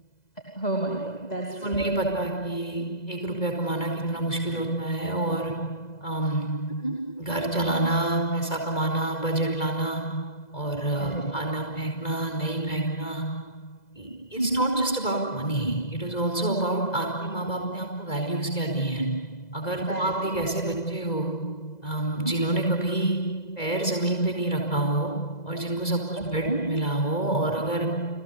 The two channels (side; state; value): right; late; 2.0 ms